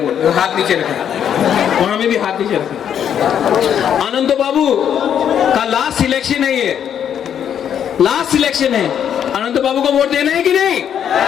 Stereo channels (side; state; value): right; quieter; 9.0 dB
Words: हाथ नीचे रखें, वहां में भी हाथ नीचे रखें। अनंत बाबू का लास्ट सिलेक्शन है, ये लास्ट सिलेक्शन है। अनंत बाबू को वोट देना है कि नहीं?